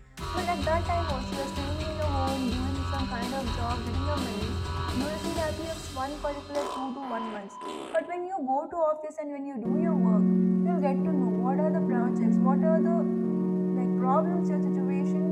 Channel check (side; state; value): both; identical; correlation 1.00